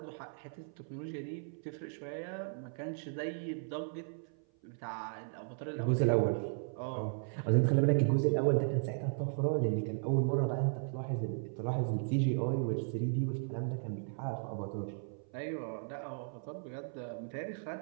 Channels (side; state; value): left; silent; 54 dB below the other